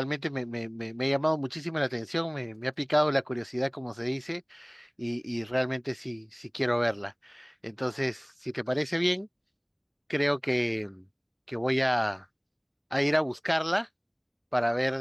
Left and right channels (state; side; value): identical; both; correlation 1.00